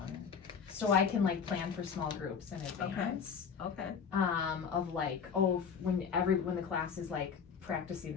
so I can like plan for small groups in advance. Okay. Of like, oh, when the class is like practicing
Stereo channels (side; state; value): right; quieter; 6.5 dB